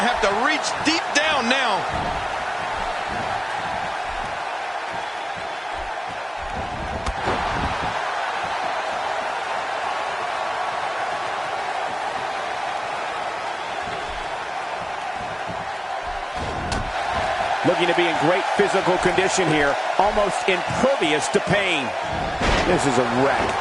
have to reach deep down now. Looking to be in great physical condition here, almost impervious to pain. This is a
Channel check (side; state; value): both; identical; correlation 1.00